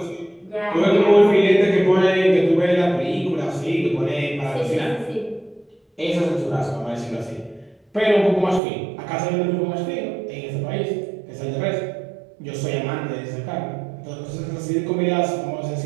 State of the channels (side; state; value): left; drops out; at 8.6 s